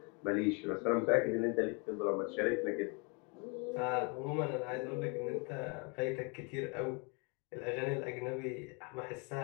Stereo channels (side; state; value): right; quieter; 33.1 dB